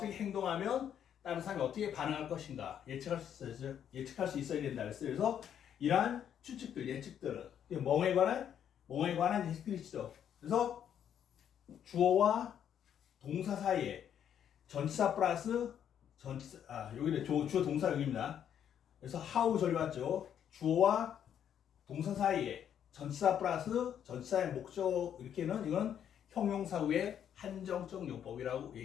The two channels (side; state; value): right; quieter; 9.3 dB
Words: 행동하면 다른 사람이 어떻게 반응할 것인가 예측할 수 있어야 된다 그랬어요. 그래서 이러한 추측들, 예측들은 뭐에 관한 예측들이죠. 그래서 주어와 동사 사이에 전치사 플러스 여기는 주어 동사 여기입니다. 그래서 how 절이 왔죠. 주어와 동사 사이에 전치사 플러스 전치사의 목적 이렇게는 이건 형용사 후의 한정적 용법이라고